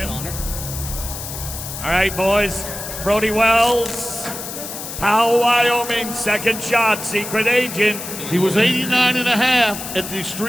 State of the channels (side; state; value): left; noise; hiss, 8 dB below the sound